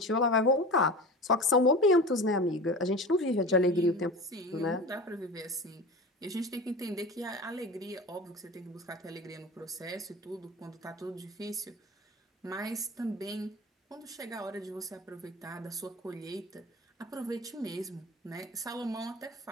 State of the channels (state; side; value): normal; both; correlation 0.32